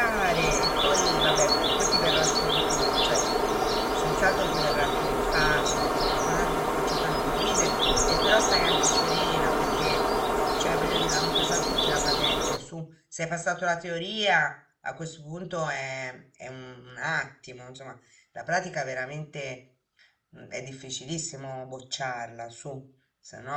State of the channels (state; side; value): identical; both; correlation 1.00